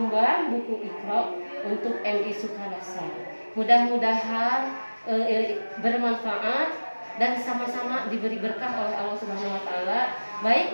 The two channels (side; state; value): both; inverted; correlation -1.00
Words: buku Iqra untuk MI Sukarasa. Mudah-mudahan bermanfaat dan sama-sama diberi berkah oleh Allah Subhanahu wa taala,